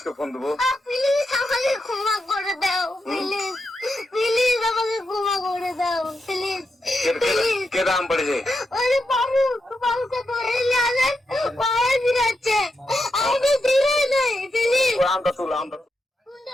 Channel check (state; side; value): normal; both; correlation 0.85